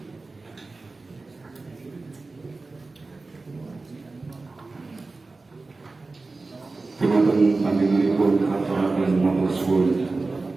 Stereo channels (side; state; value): left; quieter; 3.6 dB